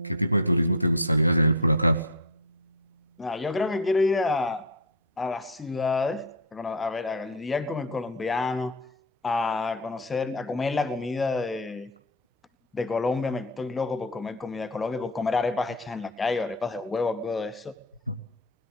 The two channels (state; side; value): normal; both; correlation 0.11